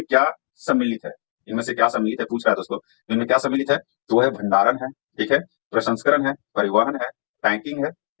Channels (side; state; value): right; silent; digital silence